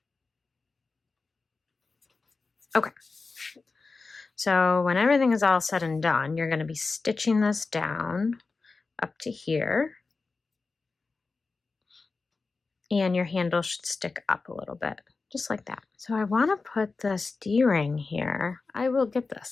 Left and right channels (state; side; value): quieter; right; 4.1 dB